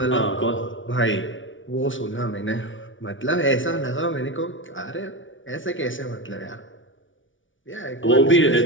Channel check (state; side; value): late; right; 0.56 ms